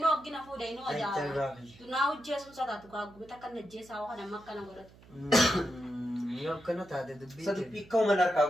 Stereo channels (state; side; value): noise; right; hum, 24 dB below the sound